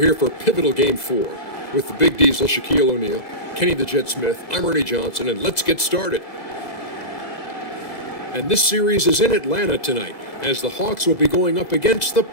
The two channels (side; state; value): right; late; 2.0 ms